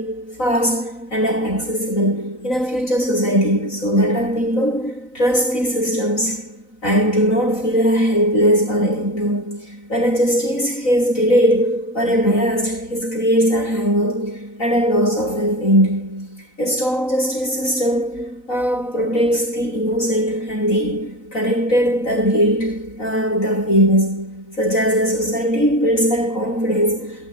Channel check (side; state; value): right; late; 3.9 ms